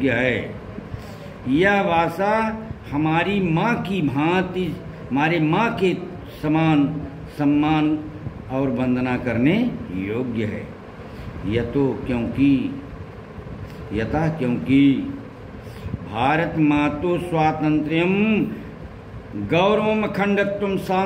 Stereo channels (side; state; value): both; identical; correlation 1.00